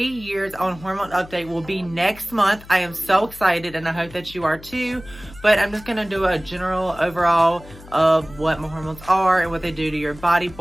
years on hormone update will be next month. I am so excited, and I hope that you are too. But I'm just going to do a general overall of what my hormones are and what they do to your body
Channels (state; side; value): noise; left; hum, 19 dB below the sound